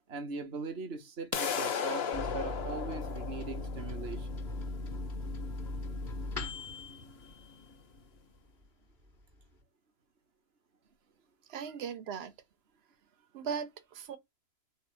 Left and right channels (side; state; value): left; late; 3.0 ms